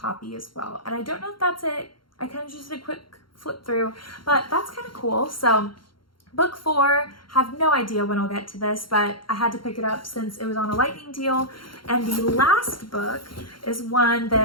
as well. And I don't know if that's it. I kind of just did a quick flip through, but that's kind of cool. So book 4, have no idea when I'll get to this, but I had to pick it up since it was on a lightning deal. And the last book is one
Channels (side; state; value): right; late; 0.73 ms